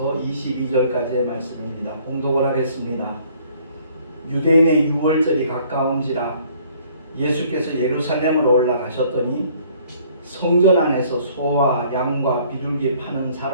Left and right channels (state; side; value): inverted; both; correlation -0.59